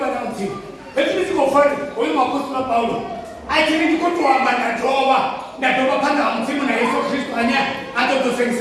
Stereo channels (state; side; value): identical; both; correlation 1.00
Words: wana mti. Hebu sikofari. Wewe apostol Paulo. Akiri kutoa bana toba. Ndatoba panga mtimu na Yesu Kristo anya